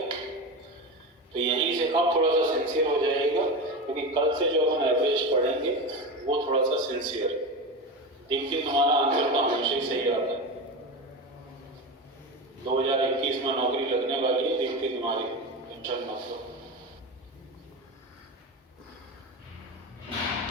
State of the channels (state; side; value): normal; both; correlation 0.23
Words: तो यहीं से अब थोड़ा सा सिंसियर हो जाएगा, क्योंकि कल से जो अपन एवरेज पढ़ेंगे वो थोड़ा सा सिंसियर। देखिए तुम्हारा आंसर तो हमेशा ही सही आता है। 2021 में नौकरी लगने वाली है, देखते तुम्हारी, टेंशन मत लो।